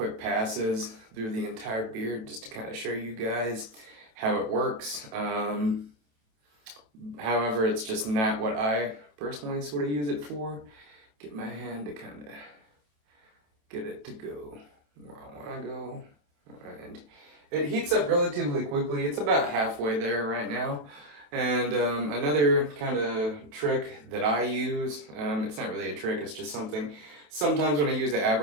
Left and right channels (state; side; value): late; left; 27 ms